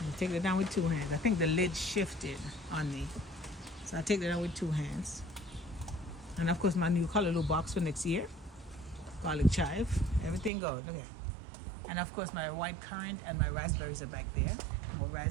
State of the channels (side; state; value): left; drops out; at 10.5 s